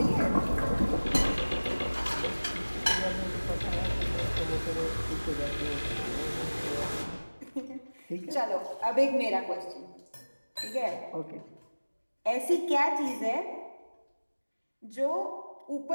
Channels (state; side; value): inverted; both; correlation -1.00